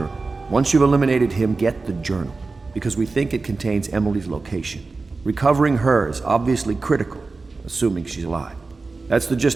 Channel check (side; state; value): left; quieter; 3.9 dB